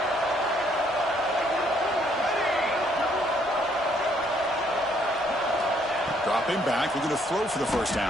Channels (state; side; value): noise; right; rumble, 24 dB below the sound